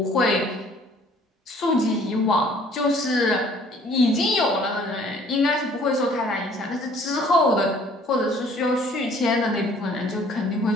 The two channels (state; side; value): normal; both; correlation 0.56